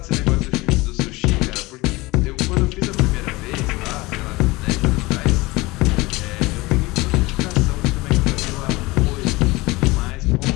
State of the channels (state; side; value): quieter; right; 21.8 dB